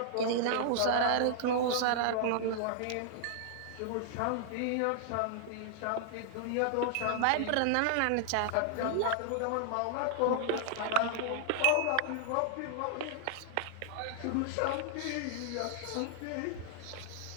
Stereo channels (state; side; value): different; both; correlation -0.01